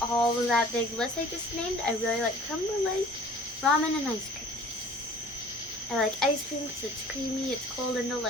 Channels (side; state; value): both; normal; correlation 0.48